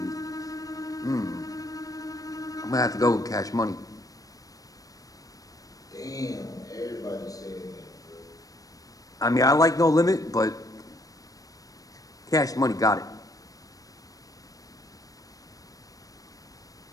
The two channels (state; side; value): late; right; 0.17 ms